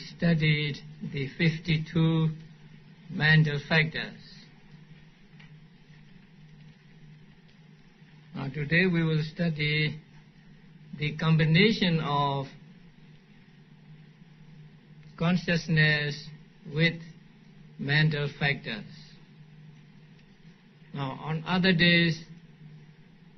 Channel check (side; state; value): both; identical; correlation 1.00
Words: studied the 52 mental factors. Now today we will study the combination of consciousness with mental factors. Now on other days